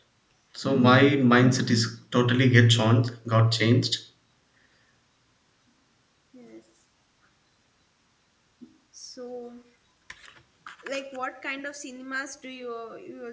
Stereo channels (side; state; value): both; identical; correlation 1.00